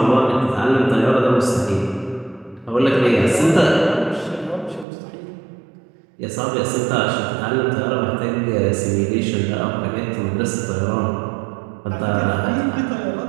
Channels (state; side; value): drops out; left; at 4.9 s